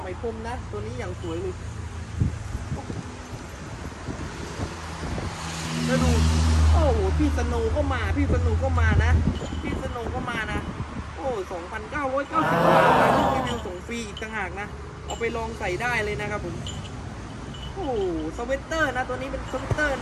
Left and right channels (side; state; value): both; identical; correlation 1.00